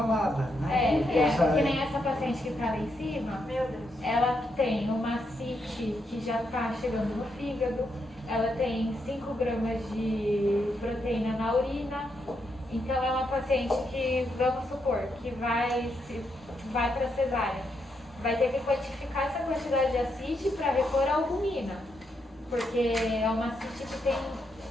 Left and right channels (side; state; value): both; normal; correlation 0.80